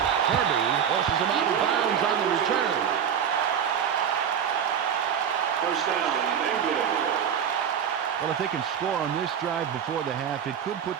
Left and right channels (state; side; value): quieter; left; 8.3 dB